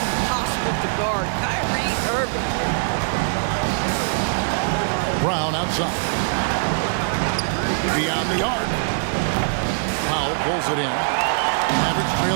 to guard. Kyrie Irving. Brown outside. Beyond the arc. Powell pulls it in. Mavericks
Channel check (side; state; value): left; silent; digital silence